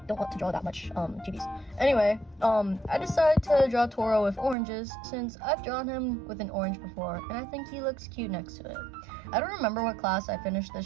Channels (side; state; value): left; drops out; at 4.5 s